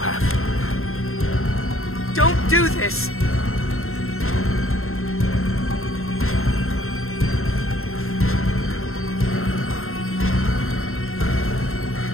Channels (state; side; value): late; right; 0.62 ms